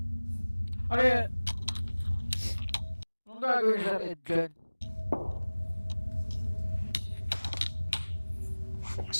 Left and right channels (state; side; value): inverted; both; correlation -1.00